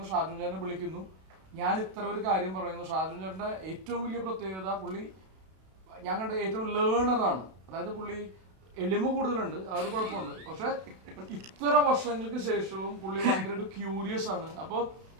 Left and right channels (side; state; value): left; late; 32 ms